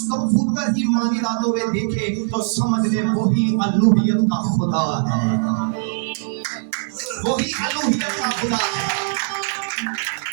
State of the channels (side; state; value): left; silent; digital silence